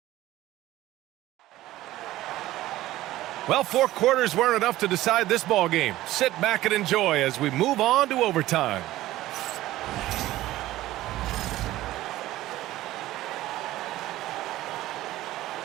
Well, 4 quarters weren't enough to decide this ball game. Sit back and enjoy as we move on to overtime.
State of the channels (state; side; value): quieter; left; 15.7 dB